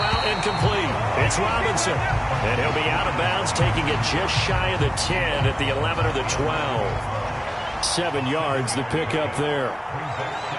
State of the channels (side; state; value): both; identical; correlation 1.00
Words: incomplete. It's Robinson. And he'll be out of bounds, taking it just shy of the 10 at the 11 or the 12. 7 yards, the pickup there.